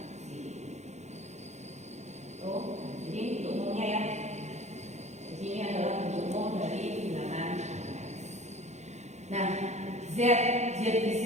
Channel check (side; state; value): left; late; 0.33 ms